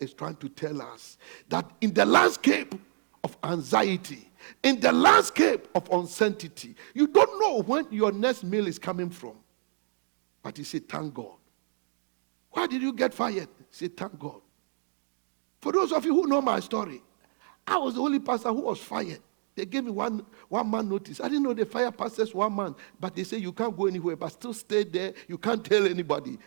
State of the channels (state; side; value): silent; left; digital silence